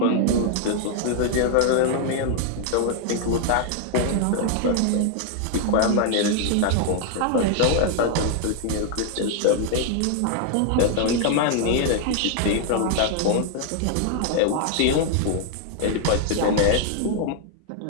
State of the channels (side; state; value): both; different; correlation 0.00